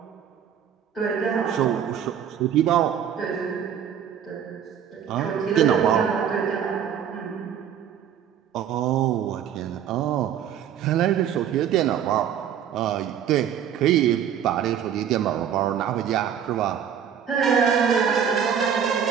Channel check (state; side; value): quieter; left; 8.8 dB